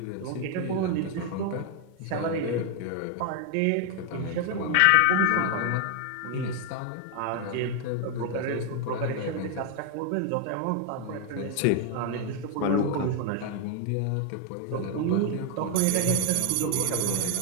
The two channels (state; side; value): different; both; correlation 0.00